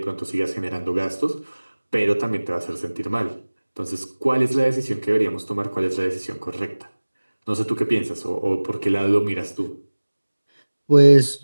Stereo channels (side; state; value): both; inverted; correlation -1.00